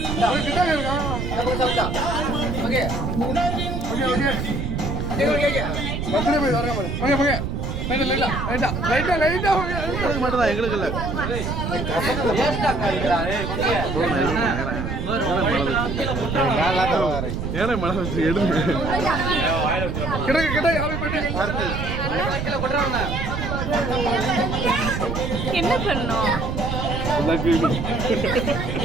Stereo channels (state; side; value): noise; right; rumble, 3 dB below the sound